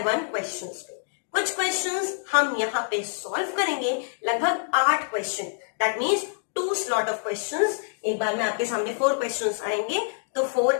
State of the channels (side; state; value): right; silent; digital silence